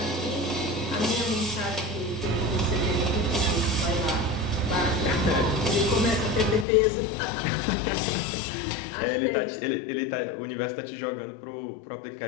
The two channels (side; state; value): right; drops out; at 6.7 s